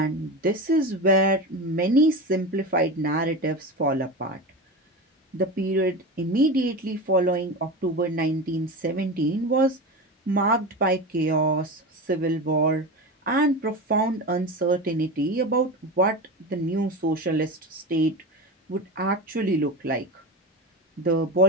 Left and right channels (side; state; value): both; normal; correlation 0.24